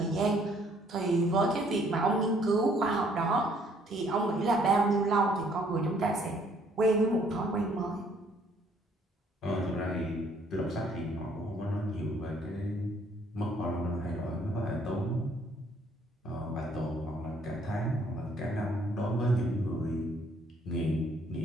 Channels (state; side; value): normal; both; correlation 0.64